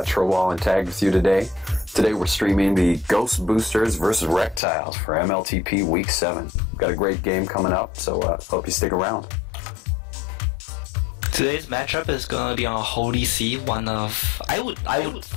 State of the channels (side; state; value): right; drops out; at 4.6 s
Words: Trowall and Tag with you today. Today we're streaming the Ghostboosters versus Rektiles for MLTP Week 7. We've got a great game coming up, so hope you stick around. Today's matchup is gonna be on Holy See, one of I would